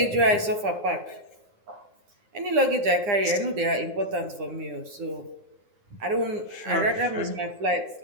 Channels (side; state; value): left; late; 9.8 ms